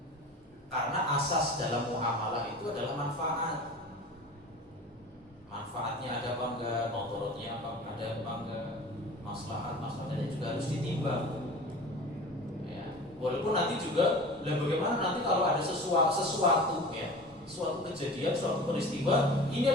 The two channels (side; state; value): both; normal; correlation 0.38